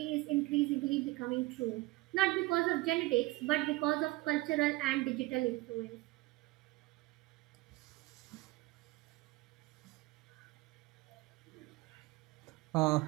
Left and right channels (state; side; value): quieter; left; 21.1 dB